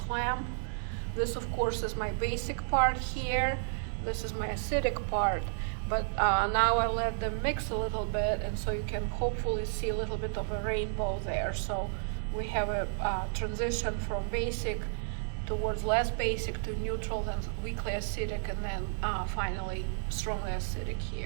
clamp. This of course is my basic part here, this is my acidic part, but now I let them mix a little bit, and so you can hopefully see a little bit of a rainbow there. So we have a transition from basic towards less basic to neutral, then weakly acidic, and then finally strongly acidic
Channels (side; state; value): left; silent; 56 dB below the other